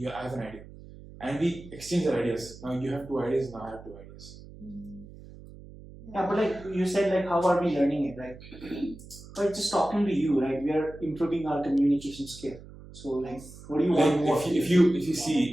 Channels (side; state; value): right; noise; hum, 18 dB below the sound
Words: I have an idea, and we exchange our ideas, now you have two ideas, now I have two ideas. Yeah, but like you said, like how are we learning it, right? But just talking to you, right? We are improving our communication skill. So like, what do you want more? If you